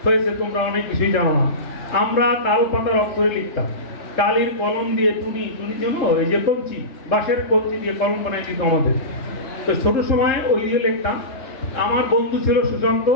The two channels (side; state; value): right; late; 3.7 ms